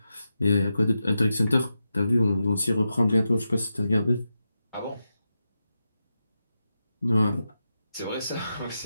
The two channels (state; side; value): inverted; both; correlation -0.89